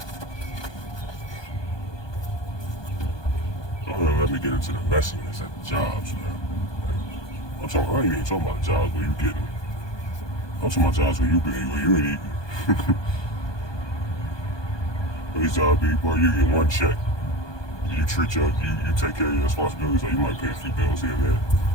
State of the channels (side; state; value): right; late; 1.2 ms